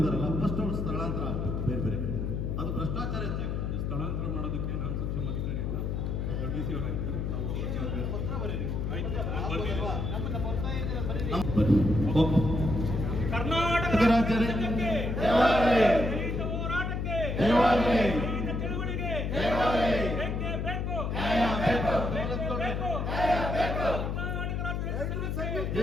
ಫಸ್ಟ್ ಅವ್ರು ಸ್ಥಳಾಂತರ ಆಗಬೇಕು. ಬೇರೆ ಅದು ಭ್ರಷ್ಟಾಚಾರ ಸ್ಥಳಾಂತರ ಮಾಡೋದಕ್ಕೆ ನಾನು ಸಕ್ಷಮ ಅಧಿಕಾರಿ ಇಲ್ಲ, ಡಿ ಸಿ ಅವರಾಗಿದ್ದಾರೆ. ಕರ್ನಾಟಕ ರಾಜ್ಯಕ್ಕೆ ಹೋರಾಟಕ್ಕೆ ಚಳುವಳಿಗೆ ಬೇಕು.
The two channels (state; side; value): noise; left; hum, 1 dB below the sound